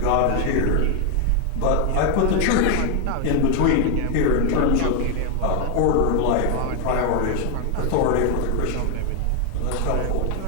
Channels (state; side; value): different; both; correlation 0.01